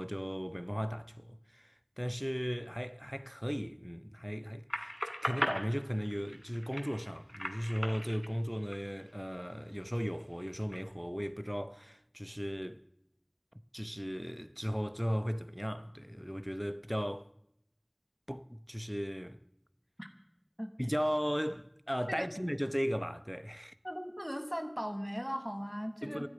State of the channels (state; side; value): identical; both; correlation 1.00